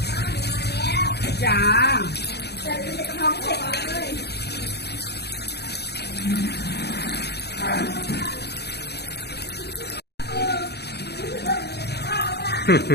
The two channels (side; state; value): right; late; 0.48 ms